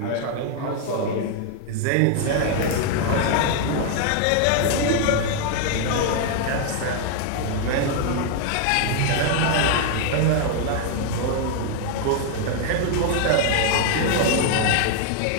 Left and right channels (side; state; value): both; different; correlation 0.00